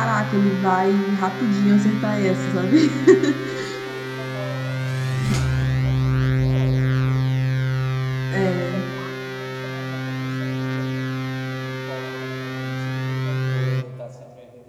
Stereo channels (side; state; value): both; identical; correlation 1.00